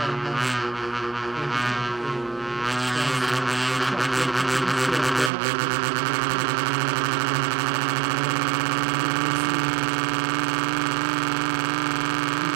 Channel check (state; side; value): drops out; left; at 5.3 s